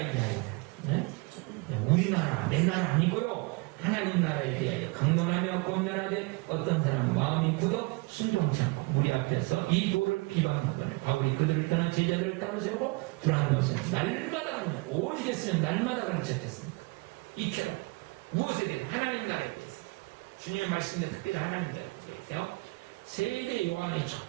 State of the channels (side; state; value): left; quieter; 27.2 dB